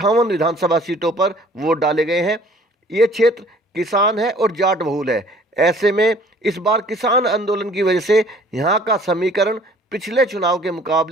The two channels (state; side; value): normal; both; correlation 0.54